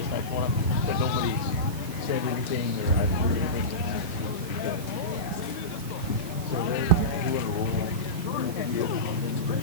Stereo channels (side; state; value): right; noise; hiss, 15 dB below the sound